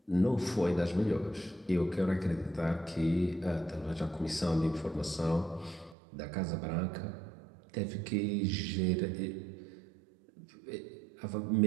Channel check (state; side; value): drops out; left; at 6.0 s